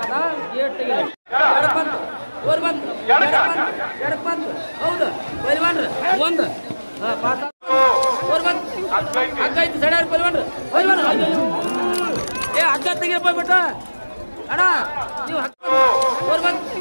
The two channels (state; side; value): inverted; both; correlation -1.00